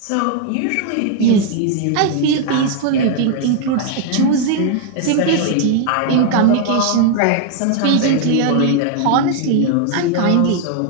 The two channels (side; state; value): both; different; correlation 0.00